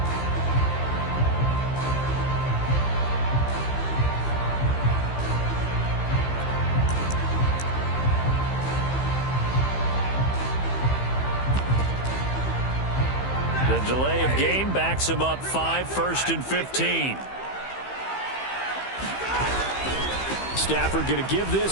The delay of game backs him up 5, 1st and 15. Stafford going to give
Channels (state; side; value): late; right; 15 ms